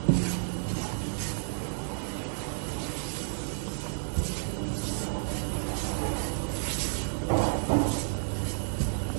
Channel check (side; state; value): left; silent; digital silence